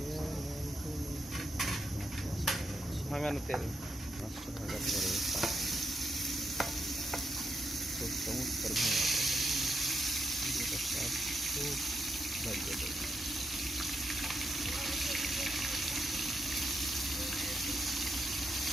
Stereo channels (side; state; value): both; normal; correlation 0.82